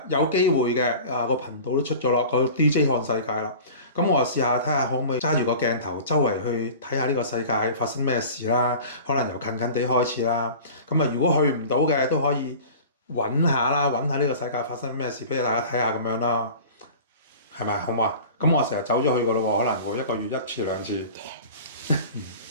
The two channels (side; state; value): both; inverted; correlation -0.39